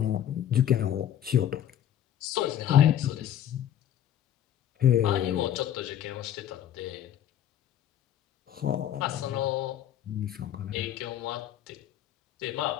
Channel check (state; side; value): quieter; right; 10.9 dB